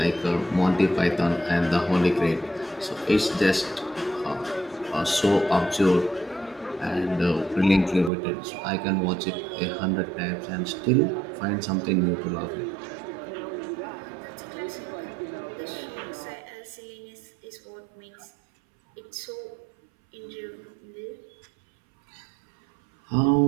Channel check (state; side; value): drops out; left; at 8.1 s